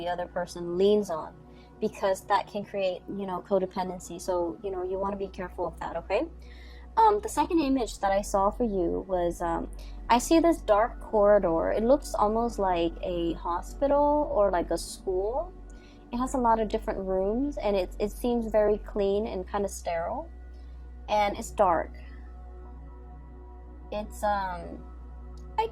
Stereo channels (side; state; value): both; identical; correlation 1.00